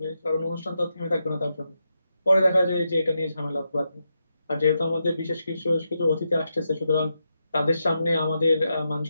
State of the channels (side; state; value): both; inverted; correlation -0.85